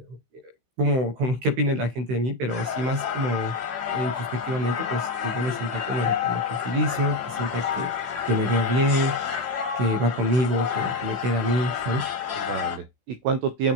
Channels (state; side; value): late; left; 16 ms